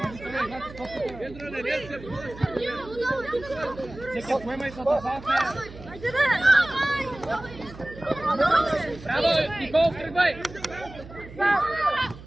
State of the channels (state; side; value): noise; right; hum, 16 dB below the sound